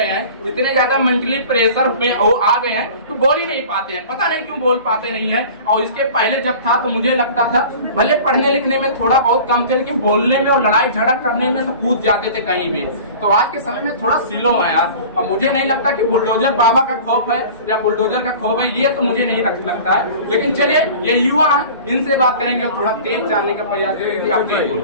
हैं, इतने ज्यादा मेंटली प्रेशर में वो आ गए हैं, तो बोल ही नहीं पाते हैं। पता नहीं क्यों बोल पाते नहीं है। और इसके पहले जब था तो मुझे लगता था भले पढ़ने लिखने में थोड़ा बहुत कम थे, लेकिन बोलने में और लड़ाई झगड़ा करने में तो कूद जाते थे कहीं भी। तो आज के समय में थोड़ा स्लो है यार। और मुझे नहीं लगता कि बुलडोजर बाबा का खौफ है या बुलडोजर का खौफ है, ये तो मुझे नहीं लगता है। लेकिन चलिए, ये युवा है, इनसे बात करेंगे और थोड़ा तेज जानने का प्रयास करेंगे। आप तेज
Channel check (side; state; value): both; inverted; correlation -0.41